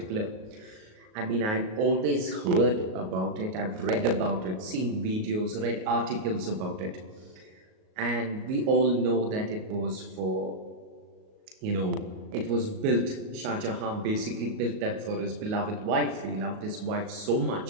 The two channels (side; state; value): left; late; 38 ms